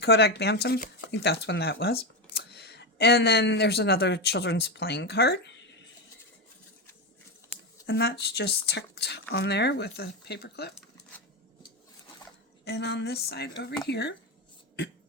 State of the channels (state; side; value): normal; both; correlation 0.12